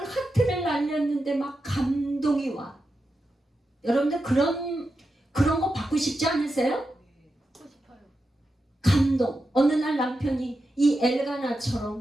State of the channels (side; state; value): both; normal; correlation 0.89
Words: 하트를 날렸는데 막 감동이 와. 여러분들 그런 거 받고 싶지 않으세요? 하고 싶어요. 감동. 어느 날 남편이 이